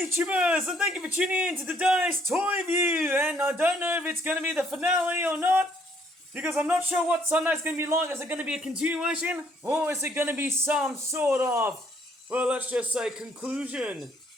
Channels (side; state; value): both; normal; correlation 0.66